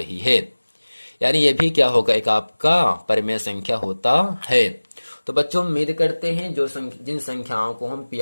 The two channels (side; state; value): both; inverted; correlation -1.00